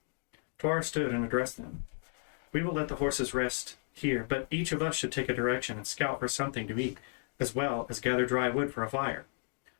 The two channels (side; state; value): right; silent; 55 dB below the other